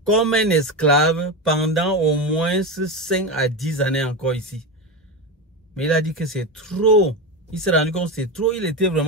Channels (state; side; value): normal; both; correlation 0.17